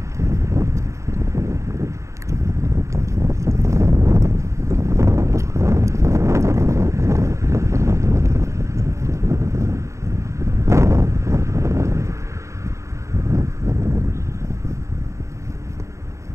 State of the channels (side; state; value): left; late; 0.14 ms